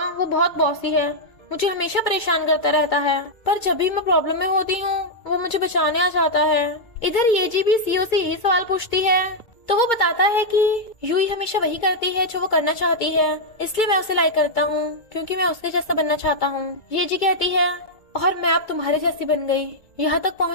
वो बहुत बॉसी है, मुझे हमेशा परेशान करता रहता है, पर जब भी मैं प्रॉब्लम में होती हूँ वो मुझे बचाने आ जाता है। इधर येजी भी सीओ से यही सवाल पूछती है, तो वो बताता है कि यूई हमेशा वही करती है जो वो करना चाहती है, इसलिए मैं उसे लाइक करता हूँ क्योंकि मैं उसके जैसा बनना चाहता हूँ। येजी कहती है, और मैं अब तुम्हारे जैसी बन गई, यहाँ तक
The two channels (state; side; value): late; right; 2.0 ms